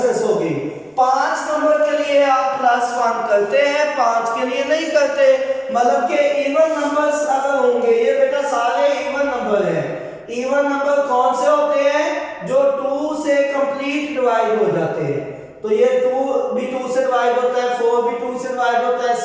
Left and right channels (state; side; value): identical; both; correlation 1.00